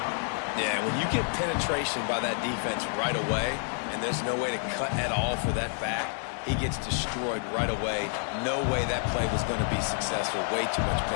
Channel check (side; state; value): right; silent; 55 dB below the other